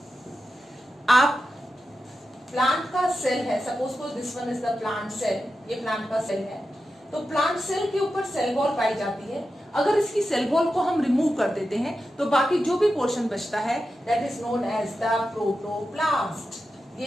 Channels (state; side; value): normal; both; correlation 0.91